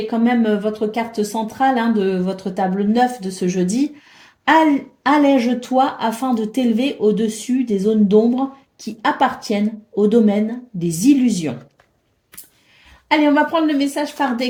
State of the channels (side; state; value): both; identical; correlation 1.00